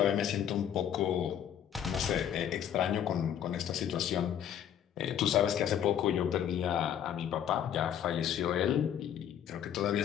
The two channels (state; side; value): quieter; right; 9.7 dB